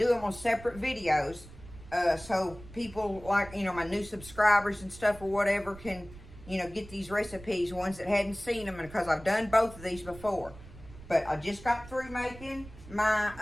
them on separate videos. So people like, my new subscribers and stuff or whatever can, get these recipes. Ones that hadn't seen them. Because I've done both of these before. But I just got through making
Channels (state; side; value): noise; right; rumble, 18 dB below the sound